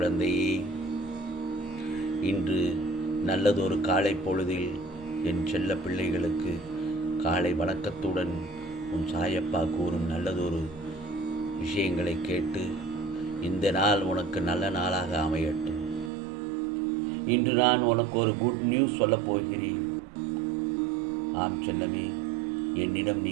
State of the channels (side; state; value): left; drops out; at 16.1 s